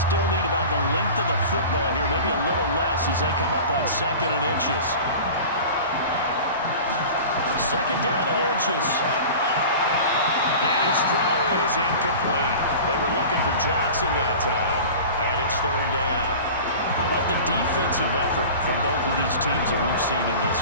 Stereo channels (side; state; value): both; inverted; correlation -0.37